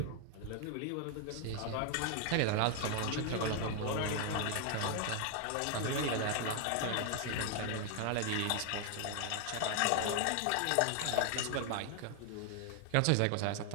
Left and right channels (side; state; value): both; different; correlation 0.00